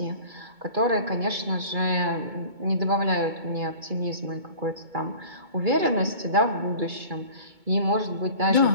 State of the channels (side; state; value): left; late; 2.2 ms